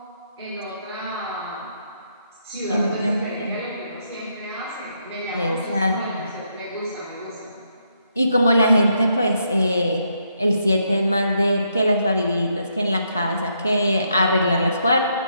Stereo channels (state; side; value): inverted; both; correlation -0.77